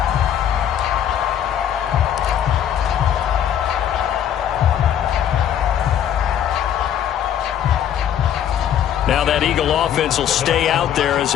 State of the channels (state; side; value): quieter; right; 9.8 dB